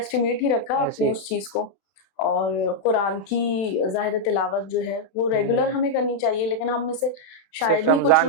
ही रखा अपनी उस चीज को। और कुरान की ज़ाहिर तिलावत जो है वो रेगुलर हमें करनी चाहिए, लेकिन हम में से शायद ही कुछ रमजान के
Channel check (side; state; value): right; late; 32 ms